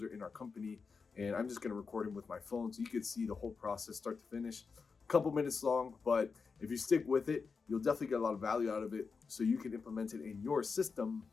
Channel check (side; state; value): right; quieter; 5.0 dB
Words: in our company, and I'm just going to record him with my phone so you can see the whole process start to finish. A couple minutes long, but if you stick with it, you'll definitely get a lot of value out of it so you can implement it in your system